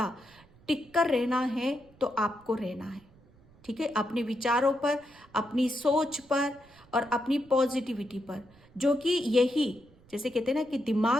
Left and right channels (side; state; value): right; noise; rumble, 27 dB below the sound